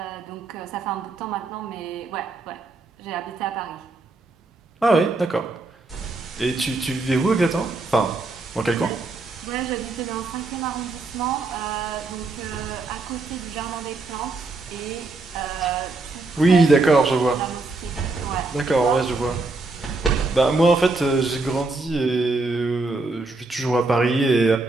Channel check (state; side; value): quieter; left; 3.4 dB